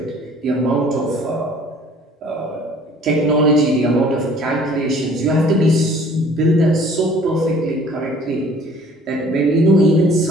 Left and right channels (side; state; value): both; normal; correlation 0.53